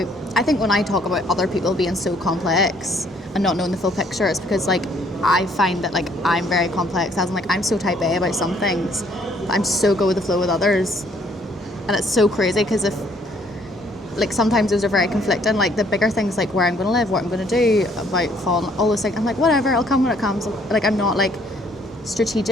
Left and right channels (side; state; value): both; normal; correlation 0.64